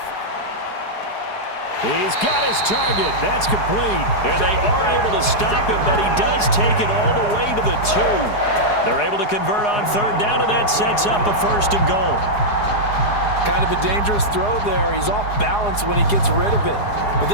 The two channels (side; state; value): right; late; 4.8 ms